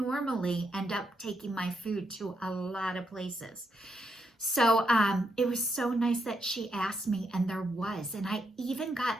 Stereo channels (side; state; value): both; normal; correlation 0.80